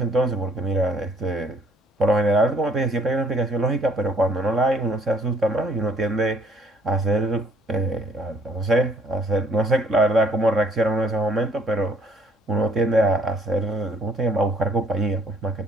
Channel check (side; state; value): both; normal; correlation 0.61